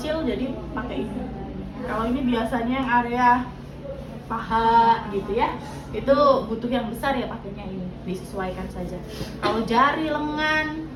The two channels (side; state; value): both; identical; correlation 1.00